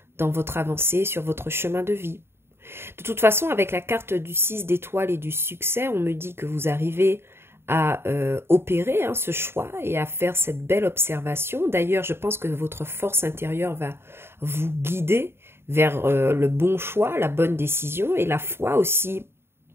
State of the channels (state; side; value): late; left; 0.11 ms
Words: dans votre avancée sur votre chemin de vie. De toute façon, avec la carte du 6 d'étoiles et du succès, on me dit que vous arrivez à opérer ce choix et à faire cette belle observation. D'ailleurs, je pense que votre force intérieure va vous guider vers le bon choix, la bonne décision, et la foi aussi